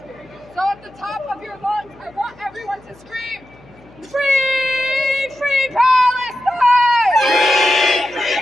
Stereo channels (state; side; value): noise; left; hum, 26 dB below the sound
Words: So at the top of your lungs, I want everyone to scream, free, free Palestine! Free,